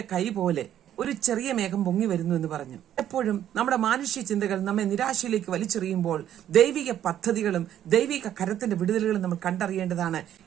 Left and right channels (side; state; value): left; quieter; 11.0 dB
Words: കൈ പോലെ ഒരു ചെറിയ മേഘം പൊങ്ങി വരുന്നു എന്ന് പറഞ്ഞു. എപ്പോഴും നമ്മുടെ മാനുഷ്യ ചിന്തകൾ നമ്മെ നിരാശയിലേക്ക് വലിച്ചെറിയുമ്പോൾ ദൈവിക പദ്ധതികളും ദൈവിക കരത്തിന്റെ വിടുതലുകളും നമ്മൾ കണ്ടറിയേണ്ടതാണ്.